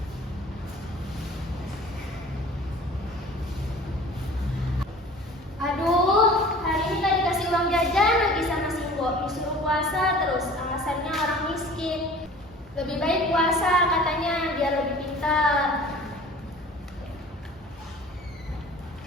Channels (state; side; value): normal; both; correlation 0.45